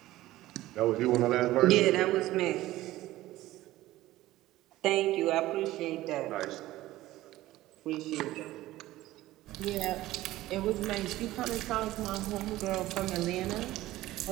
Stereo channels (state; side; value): quieter; left; 16.2 dB